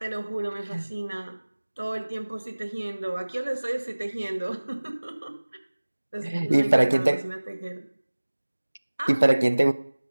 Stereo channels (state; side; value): inverted; both; correlation -1.00